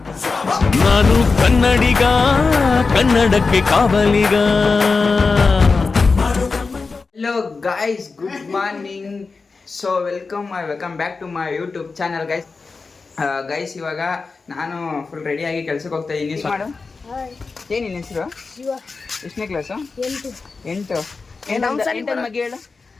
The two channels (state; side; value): quieter; right; 4.3 dB